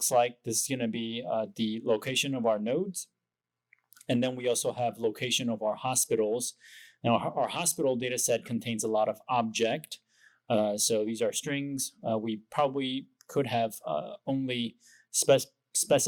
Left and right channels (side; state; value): both; identical; correlation 1.00